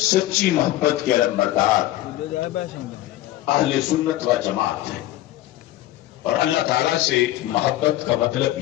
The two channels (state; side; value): quieter; right; 15.0 dB